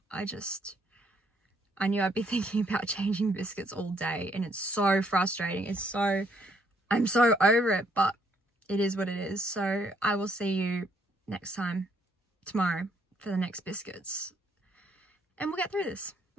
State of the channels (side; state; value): both; normal; correlation 0.69